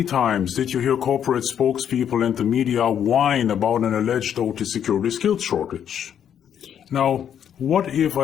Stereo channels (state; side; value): quieter; right; 9.1 dB